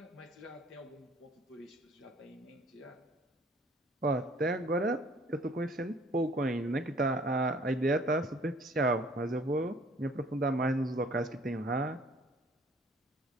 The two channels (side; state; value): both; normal; correlation 0.56